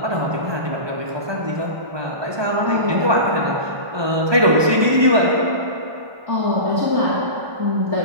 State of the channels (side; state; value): left; late; 1.2 ms